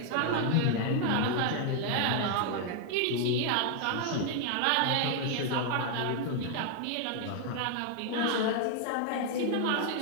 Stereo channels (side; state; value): both; different; correlation 0.00